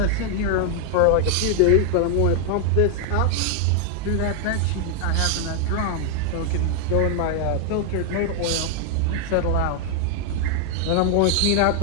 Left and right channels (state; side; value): different; both; correlation 0.00